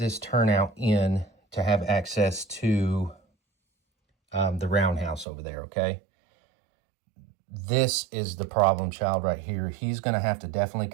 turnout in to have access to the roundhouse over there, okay? This is the problem child right here. He's going to have to definitely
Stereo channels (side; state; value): left; drops out; at 5.2 s